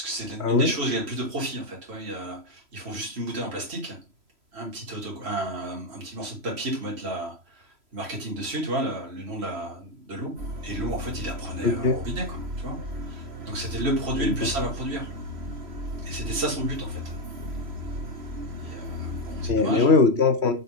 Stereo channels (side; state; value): left; late; 3.0 ms